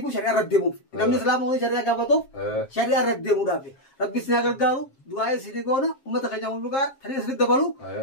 بو شريعه ردمو نمن اسلام وري شريعه غافتو شريعه ردمو دافي ربي سنا غرغارو دعاء سيديغونا امه خجاو لغا تري سيد دبلو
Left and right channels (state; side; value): late; right; 7.5 ms